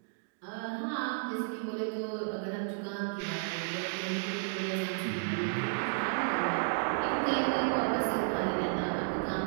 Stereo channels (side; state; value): left; silent; digital silence